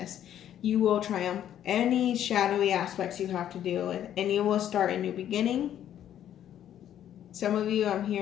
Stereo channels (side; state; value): right; quieter; 10.7 dB